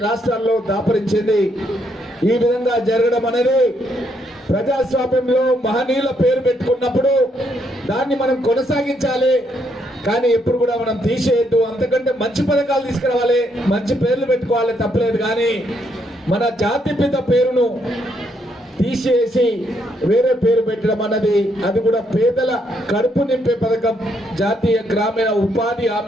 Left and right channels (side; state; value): both; normal; correlation 0.74